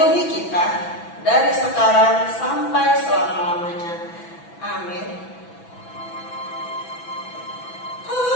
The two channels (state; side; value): late; right; 6.0 ms